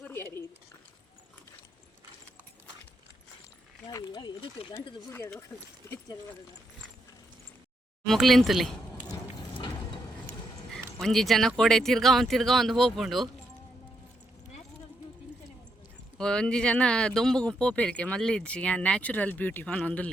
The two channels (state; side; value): normal; both; correlation 0.79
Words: ಮುಕ್ಲಿಂತಲಿ ಒಂಜಿ ಜನ ಕೋಡೆ ತಿರ್ಗಾ ಒಂದು ಹೋಗ್ಕೊಂಡು ಒಂಜಿ ಜನ ದೊಂಬುಗು ಪೋಪೆರ್ಕೆ ಮಲ್ಲಿಜ್ಜಿ ನ್ಯಾಚುರಲ್ ಬ್ಯೂಟಿ